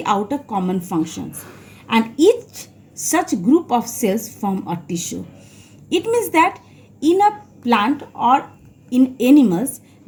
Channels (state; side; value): identical; both; correlation 1.00